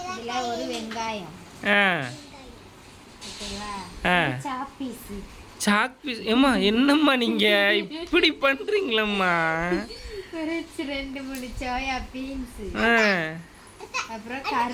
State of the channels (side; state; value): both; identical; correlation 1.00